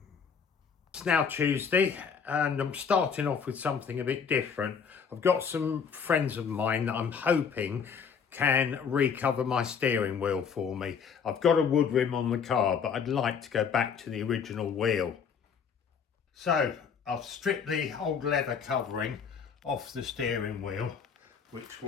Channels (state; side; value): quieter; right; 6.5 dB